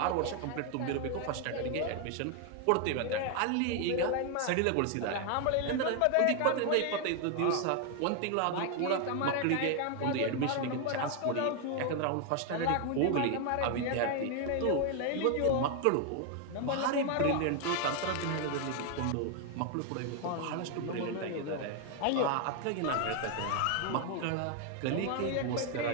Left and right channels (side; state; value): both; different; correlation 0.01